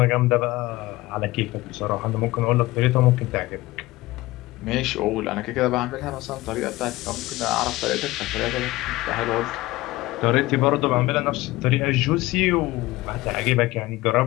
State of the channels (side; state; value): right; quieter; 19.2 dB